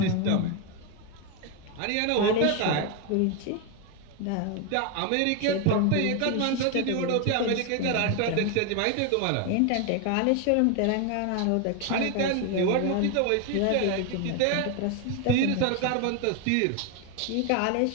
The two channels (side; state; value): both; different; correlation 0.01